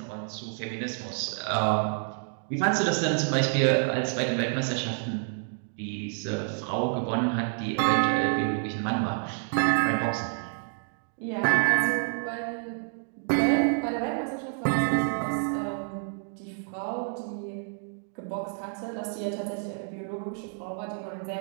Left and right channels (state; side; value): silent; left; 59 dB below the other